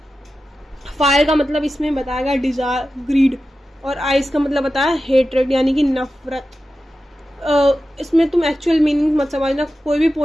fire का मतलब इसमें बताया गया डिजायर, ग्रीड, और आइस का मतलब बताया हेट्रेड यानी कि नफरत। इसमें तुम एक्चुअल मीनिंग मत समझना, कोई भी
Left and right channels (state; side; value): normal; both; correlation 0.93